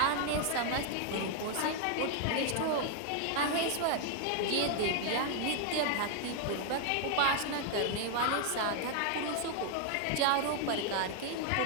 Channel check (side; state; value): both; different; correlation 0.00